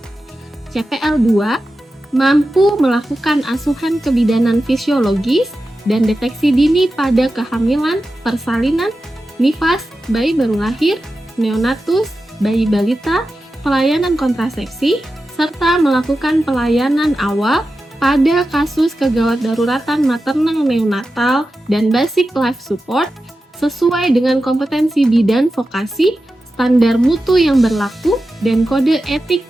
CPL 2 mampu melakukan asuhan kebidanan fisiologis dan deteksi dini pada kehamilan, persalinan, nifas, bayi baru lahir, neonatus, bayi balita, pelayanan kontrasepsi, serta melakukan pelayanan awal pada kasus kegawat daruratan maternal neonatal dan basic life support sesuai dengan kompetensi bidan vokasi, standar mutu yang berlaku, dan kode etik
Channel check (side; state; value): both; normal; correlation 0.92